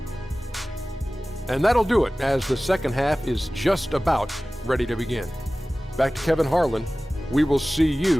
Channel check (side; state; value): both; normal; correlation 0.97